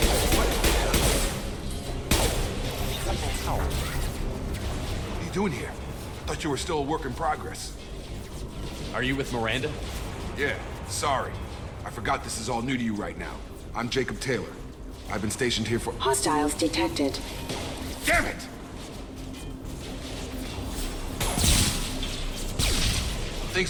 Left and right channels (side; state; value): both; identical; correlation 1.00